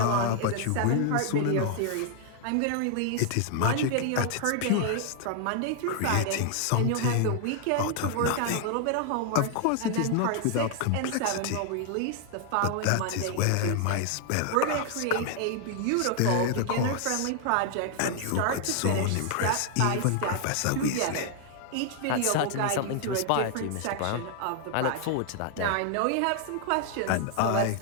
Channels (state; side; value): different; both; correlation 0.00